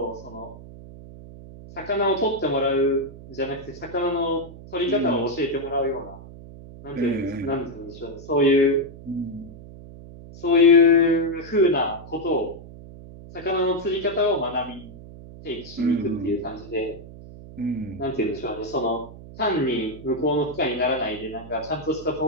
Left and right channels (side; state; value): right; noise; hum, 16 dB below the sound